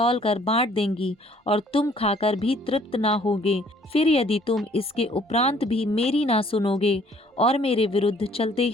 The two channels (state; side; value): normal; both; correlation 0.60